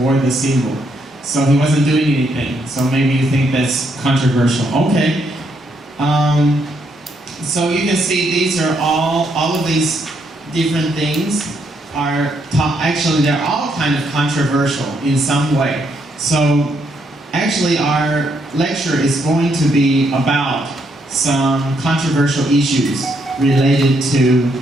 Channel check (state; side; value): normal; both; correlation 0.75